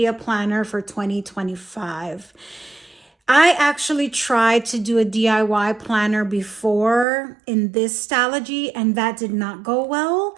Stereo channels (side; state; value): left; drops out; at 7.1 s